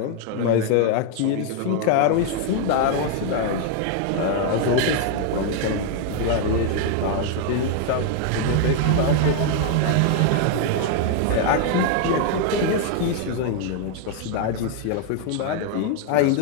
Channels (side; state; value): both; different; correlation 0.00